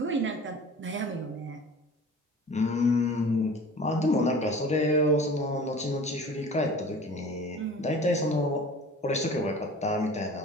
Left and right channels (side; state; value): both; normal; correlation 0.42